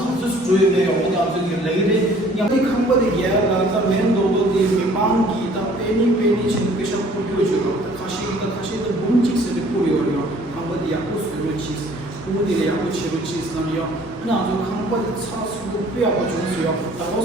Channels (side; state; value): both; normal; correlation 0.55